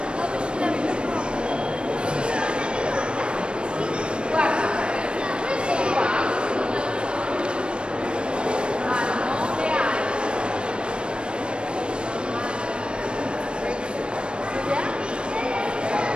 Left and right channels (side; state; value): left; late; 0.056 ms